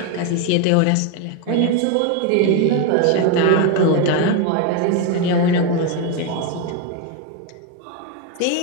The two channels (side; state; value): both; different; correlation 0.01